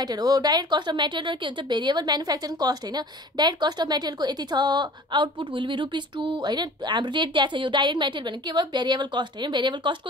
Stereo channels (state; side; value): normal; both; correlation 0.45